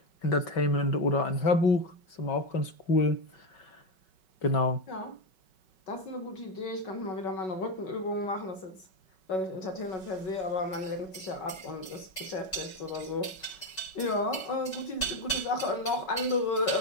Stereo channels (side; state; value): right; late; 5.3 ms